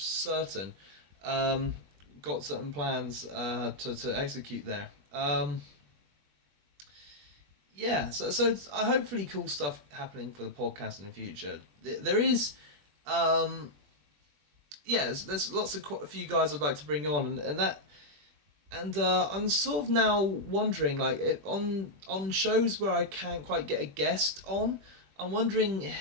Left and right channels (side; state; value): left; late; 21 ms